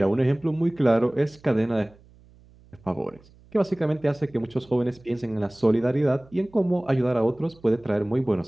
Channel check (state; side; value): noise; right; hum, 27 dB below the sound